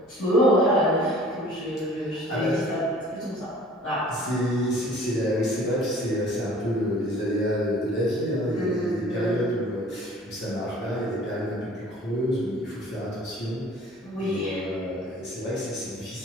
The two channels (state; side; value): normal; both; correlation 0.50